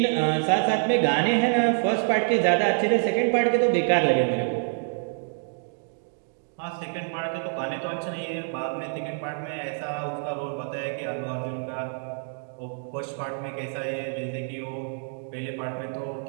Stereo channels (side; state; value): left; silent; 60 dB below the other